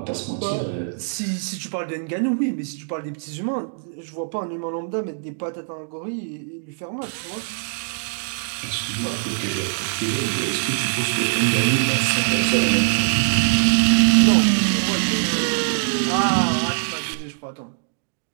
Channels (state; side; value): silent; left; digital silence